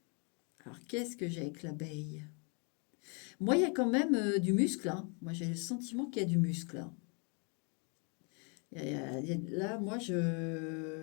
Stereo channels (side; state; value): right; quieter; 36.6 dB